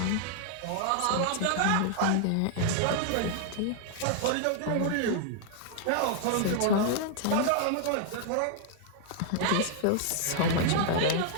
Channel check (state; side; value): different; both; correlation 0.00